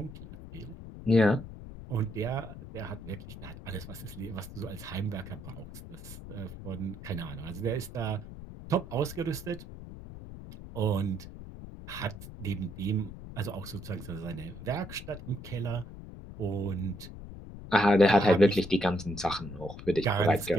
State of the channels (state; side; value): noise; left; rumble, 13 dB below the sound